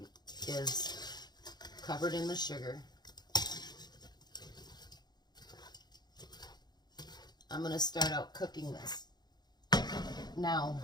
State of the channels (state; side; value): late; right; 0.20 ms